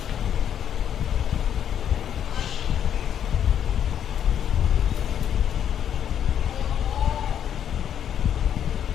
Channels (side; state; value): right; quieter; 9.3 dB